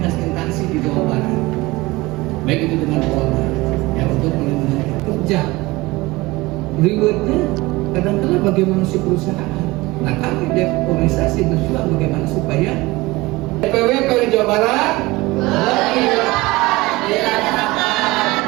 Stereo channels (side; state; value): left; quieter; 21.1 dB